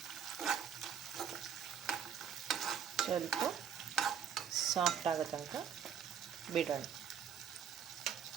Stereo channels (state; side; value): quieter; left; 8.1 dB